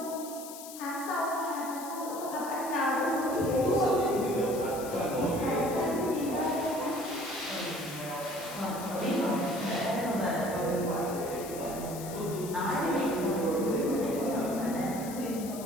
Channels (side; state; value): left; noise; hiss, 13 dB below the sound